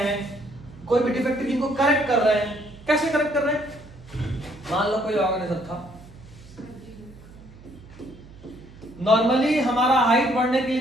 कोई भी डिफेक्टिव जीन को करेक्ट कर रहे हैं। कैसे करेक्ट कर रहे हैं? मान लो कोई ऑर्गेनिज्म था, नॉर्मली हमारा हाइट बढ़ने के लिए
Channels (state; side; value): noise; right; hum, 21 dB below the sound